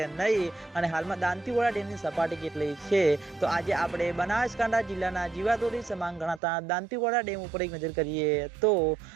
नहीं अने हालमां दांतीवाड़ा डेमनी सपाटी केटली छे। तो आज आपणे बनासकांठा जिल्लाना जीवादोरी समान गणाता दांतीवाड़ा डेम पर एक नजर करिए तो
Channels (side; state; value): left; drops out; at 6.4 s